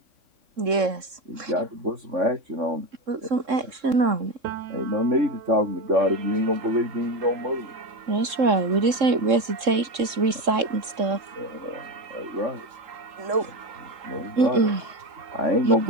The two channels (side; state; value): left; late; 3.7 ms